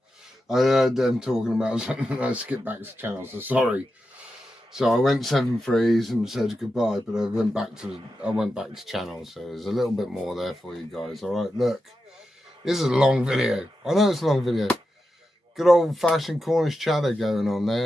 I heard them talking about something. I skipped back to channel, so sorry. So I went 7-3s and said goodbye, but I went back to channel, so there's a little bit more there for you guys. All right, look, this is a long video. I know it's a long video. Good old-fashioned Cornish chatter going on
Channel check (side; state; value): both; normal; correlation 0.90